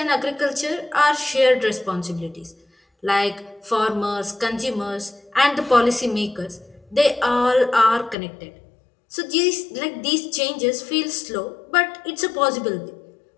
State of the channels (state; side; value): drops out; right; at 8.2 s